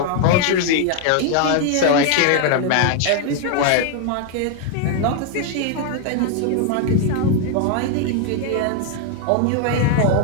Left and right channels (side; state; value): both; different; correlation 0.00